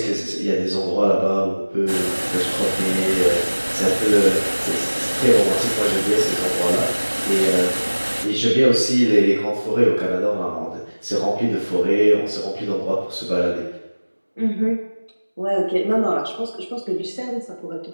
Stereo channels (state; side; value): inverted; both; correlation -1.00